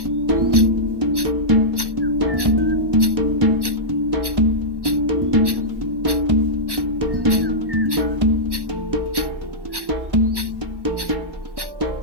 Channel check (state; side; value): late; left; 1.1 ms